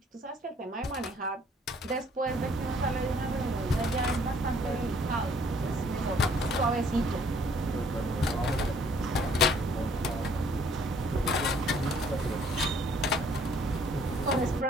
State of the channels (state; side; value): normal; both; correlation 0.61